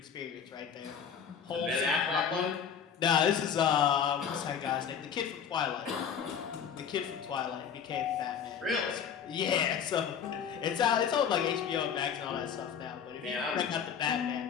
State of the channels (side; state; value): right; quieter; 7.7 dB